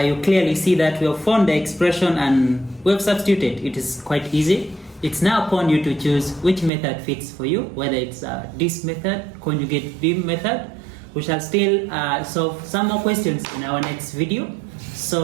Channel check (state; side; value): drops out; left; at 6.7 s